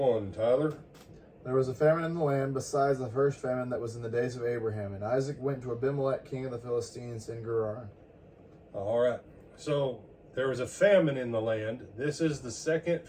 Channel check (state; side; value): identical; both; correlation 1.00